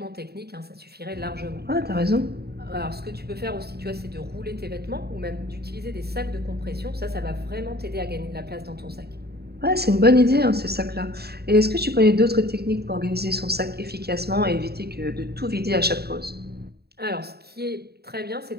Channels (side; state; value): left; late; 0.47 ms